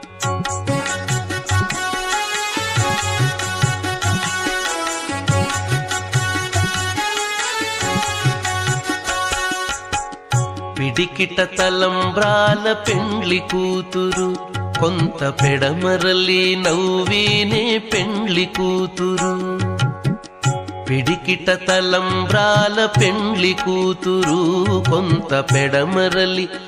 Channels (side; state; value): both; identical; correlation 1.00